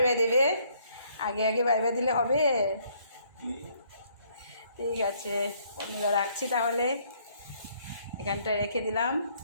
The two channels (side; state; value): both; inverted; correlation -0.66